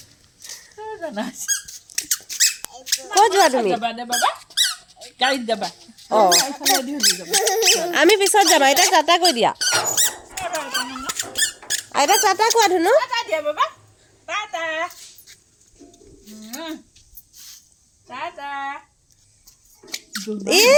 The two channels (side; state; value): both; identical; correlation 1.00